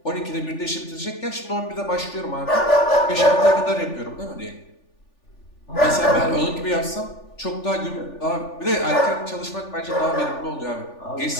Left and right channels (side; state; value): right; late; 3.4 ms